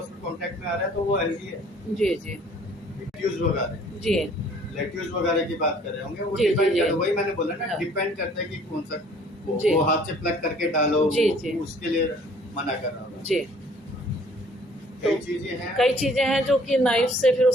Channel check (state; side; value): normal; both; correlation 0.56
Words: कांटेक्ट में आ रहा है तो वो हेल्दी है। जी। जी। लेट्यूज वगैरह जी। लेट्यूज वगैरह की बात कर रहे होंगे, वो जी, जी, डिपेंड जी। करता है, वही मैंने बोला ना, हाँ। डिपेंड करता है कि कौन सा जी। वो हाथ से प्लग करके डालो, जी, जी। उसके लिए मना कर रहा हूँ। जी। कई चीजें हैं, कई चीजें हैं जो कि नाइफ से फिर